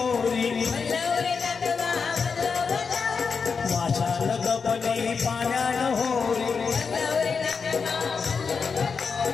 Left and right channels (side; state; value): right; quieter; 5.4 dB